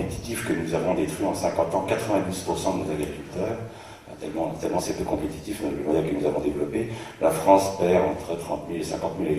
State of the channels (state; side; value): identical; both; correlation 1.00